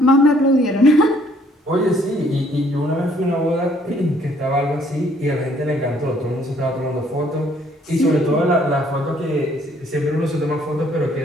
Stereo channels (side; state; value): both; normal; correlation 0.63